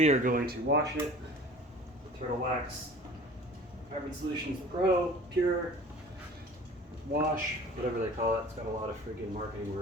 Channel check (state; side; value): normal; both; correlation 0.44